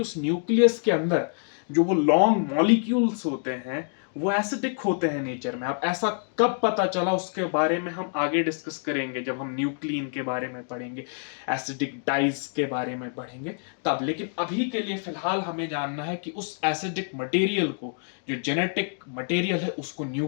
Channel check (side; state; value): right; silent; 60 dB below the other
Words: उस न्यूक्लियस के अंदर जो वो लॉन्ग मॉलिक्यूल्स होते हैं वो एसिडिक होते हैं नेचर में। अब ऐसा कब पता चला उसके बारे में हम आगे डिस्कस करेंगे, जब हम न्यूक्लियन के बारे में पढ़ेंगे, एसिडिक डाइज के बारे में पढ़ेंगे तब। लेकिन अभी के लिए फिलहाल हमें जानना है कि उस एसिडिक मटेरियल को, जो जेनेटिक मटेरियल है, उसको